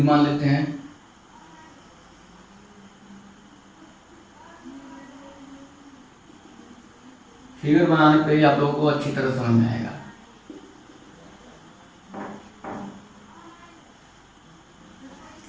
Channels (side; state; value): both; identical; correlation 1.00